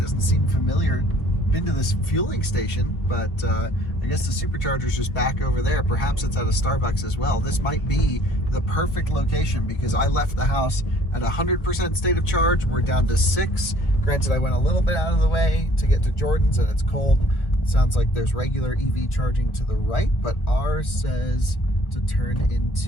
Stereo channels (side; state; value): right; late; 1.1 ms